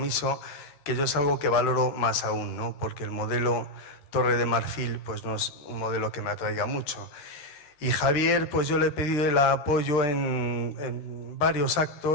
que yo es algo que valoro más aún, ¿no?, porque el modelo Torre de Marfil pues no es un modelo que me atraiga mucho. Y Javier, pues yo le he pedido el apoyo en varios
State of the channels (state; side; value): late; right; 13 ms